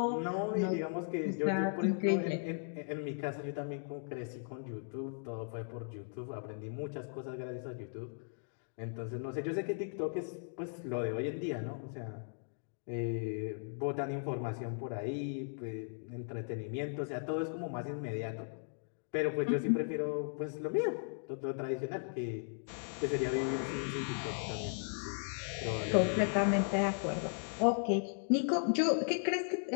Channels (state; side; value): silent; right; digital silence